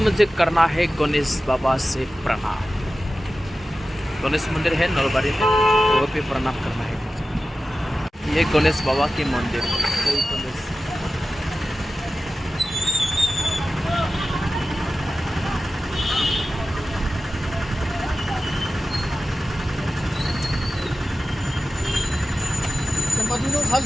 करना है गणेश बाबा से प्रणाम। गणेश मंदिर है नलबाड़ी में, तो वो भी प्रणाम करना है मुझे। ये गणेश बाबा के मंदिर है। जय गणेश।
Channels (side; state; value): both; normal; correlation 0.94